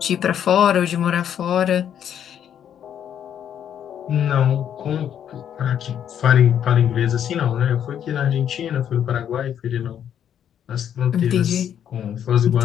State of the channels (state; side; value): quieter; right; 9.4 dB